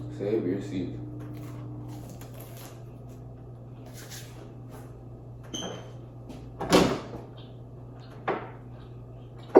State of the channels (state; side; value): identical; both; correlation 1.00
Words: Save your seeds.